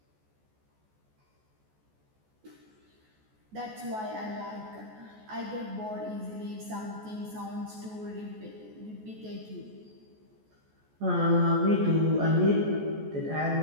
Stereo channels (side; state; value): left; late; 14 ms